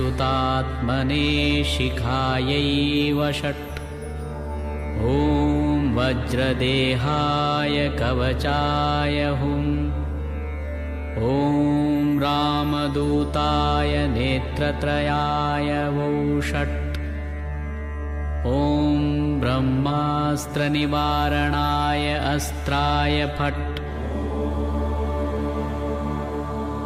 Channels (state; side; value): identical; both; correlation 1.00